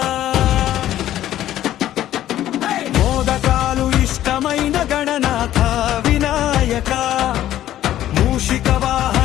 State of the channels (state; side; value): quieter; right; 12.8 dB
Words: మోదకాలు ఇష్టమైన గణనాథ వినాయక మూషిక